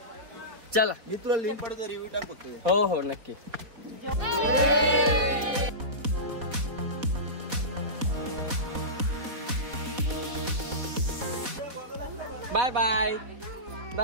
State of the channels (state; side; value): late; left; 4.1 ms